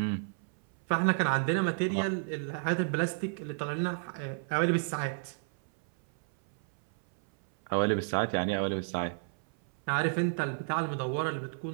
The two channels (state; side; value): silent; left; 57 dB below the other